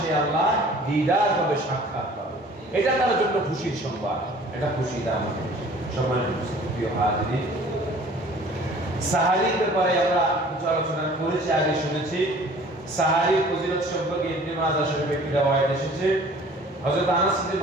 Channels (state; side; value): normal; both; correlation 0.50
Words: সে আল্লাহ দিদার পাবে, সাক্ষাৎ পাবে, এটা তার জন্য খুশির সংবাদ। এটা খুশি দাম সম্মানিত প্রিয় হাজিরিন, সাহারির ব্যাপারে আমরা কিছু আলোচনা করেছি, আগে শুনেছি। সাহারির ফজিলত সম্পর্কে ইবনে মাজাহ শরীফে একটি রওয়ায়াত এসেছে। হযরত আনাস ইবনে